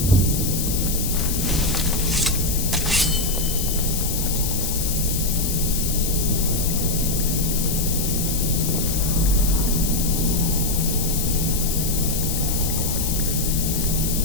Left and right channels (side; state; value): left; noise; hiss, 3 dB below the sound